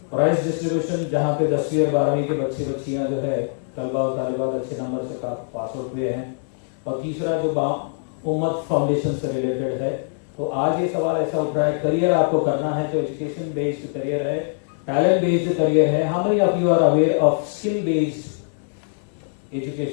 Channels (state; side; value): silent; right; 64 dB below the other